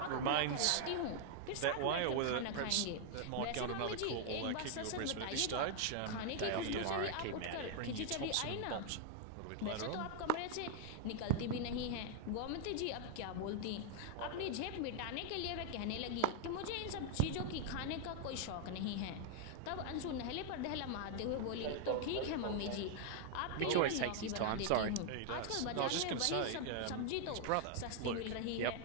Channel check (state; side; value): different; both; correlation 0.00